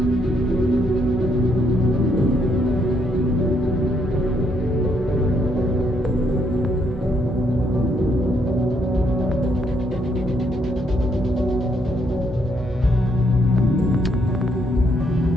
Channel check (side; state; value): both; normal; correlation 0.73